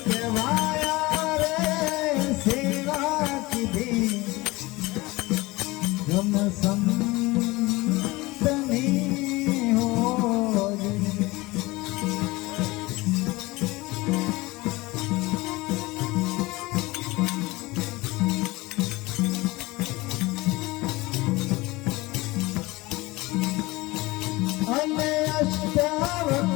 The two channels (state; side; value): quieter; right; 21.4 dB